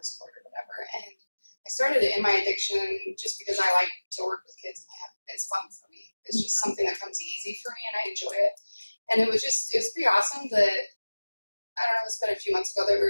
court or whatever. And I started it in my addiction just because I like to work with kids it's fun for me. It's just something that comes easy for me, and I enjoy it. And it was pretty awesome that, I don't know, it's been a few months ago that we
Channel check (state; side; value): inverted; both; correlation -1.00